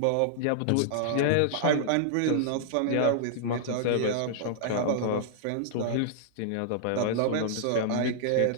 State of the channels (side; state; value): both; different; correlation -0.01